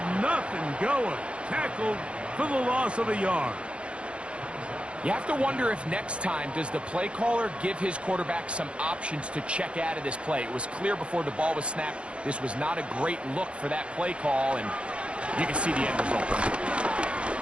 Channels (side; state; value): left; late; 0.060 ms